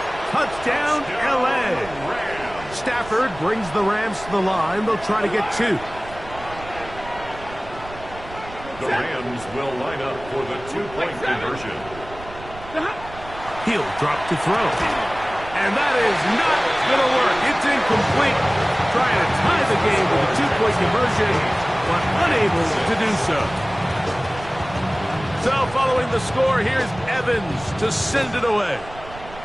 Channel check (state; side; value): noise; right; rumble, 16 dB below the sound